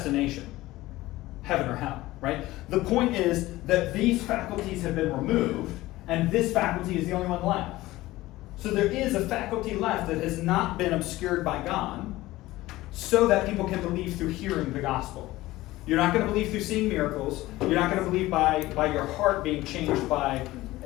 heaven or hell, right? The point is that these faculties have been removed, and this faculty is the only one left. So there is a faculty left that has not been obscured by God, so that people can believe through hearing the gospel. You're not going to believe through seeing miracles. You're not going to believe by your heart being changed by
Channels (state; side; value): quieter; right; 17.7 dB